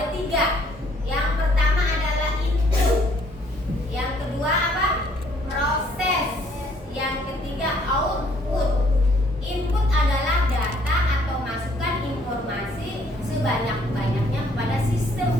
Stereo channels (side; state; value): both; normal; correlation 0.63